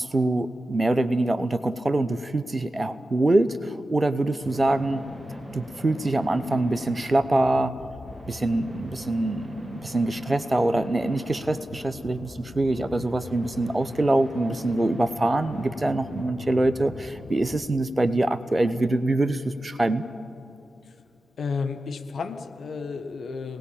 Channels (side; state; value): both; normal; correlation 0.93